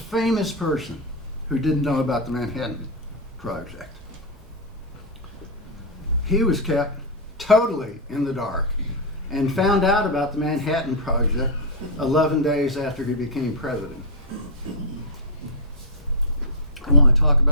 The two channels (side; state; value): both; normal; correlation -0.03